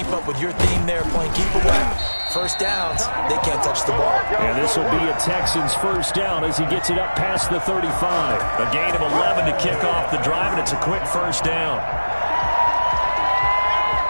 up with your theme there, playing keep away, first downs, they can't touch the ball. And this will be a Texans first down as he gets it up past the 35. A gain of 11 to kick off the drive, and it's a quick first down.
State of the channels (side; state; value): both; inverted; correlation -1.00